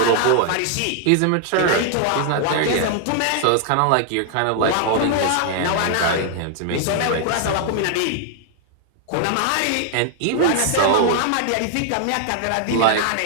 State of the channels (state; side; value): different; both; correlation 0.00